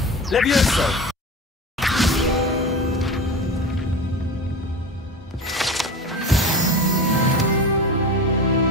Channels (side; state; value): both; normal; correlation 0.30